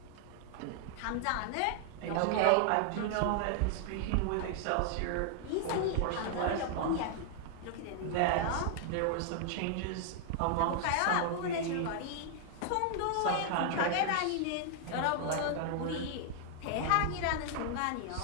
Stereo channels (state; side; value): different; both; correlation 0.00